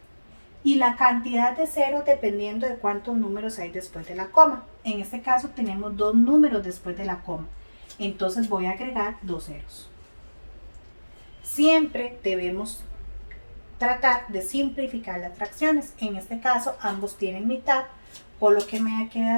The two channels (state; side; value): inverted; both; correlation -1.00